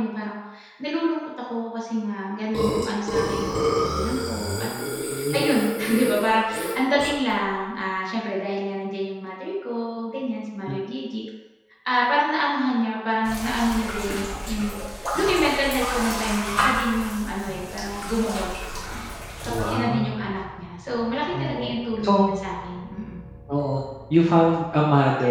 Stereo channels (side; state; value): both; identical; correlation 1.00